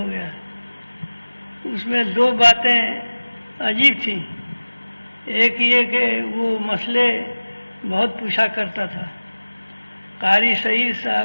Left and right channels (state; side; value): inverted; both; correlation -1.00